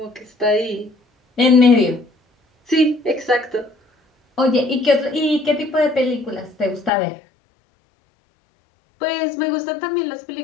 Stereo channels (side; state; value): right; drops out; at 6.9 s